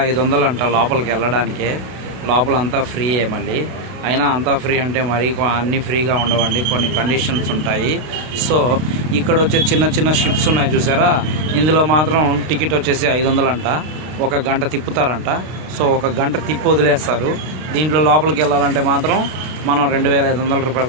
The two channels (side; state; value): left; late; 32 ms